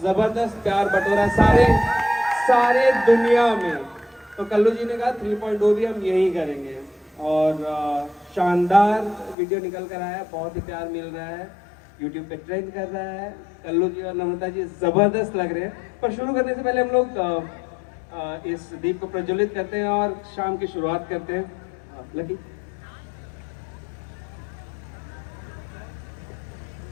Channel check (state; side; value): drops out; right; at 9.3 s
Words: ज़बरदस्त प्यार बटोरा सारे दुनिया में। तो कल्लू जी ने कहा 3.0 भी हम यही करेंगे और शानदार वीडियो निकल कर आया, बहुत ही प्यार मिल रहा है, YouTube पे ट्रेंड कर रहा है। कल्लू जी और नम्रता जी ज़बरदस्त लग रहे हैं। पर शुरू करने से पहले हम लोग इस दीप को प्रज्वलित करते हैं और शाम की शुरुआत करते हैं। लकी